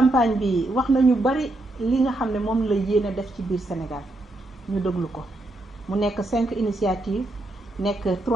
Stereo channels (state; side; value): normal; both; correlation 0.81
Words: bi wax nañu bari li nga xam ne moom la yéene def ci biir Sénégal ñu déglu ko mu nekk 5 initiatives nekk